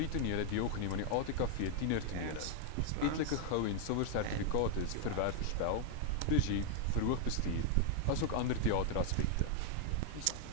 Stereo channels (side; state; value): both; different; correlation 0.00